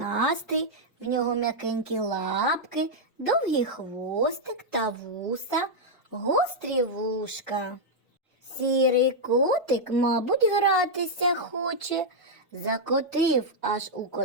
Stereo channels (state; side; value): normal; both; correlation -0.03